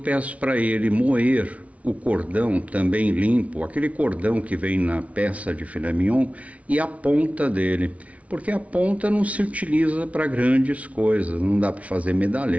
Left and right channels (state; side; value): late; left; 0.066 ms